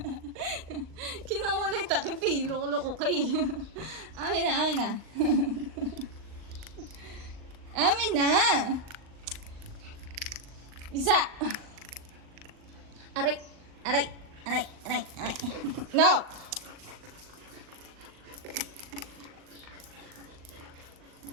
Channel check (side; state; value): left; late; 39 ms